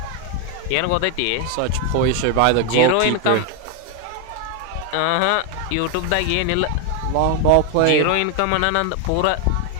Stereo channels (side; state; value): both; different; correlation 0.01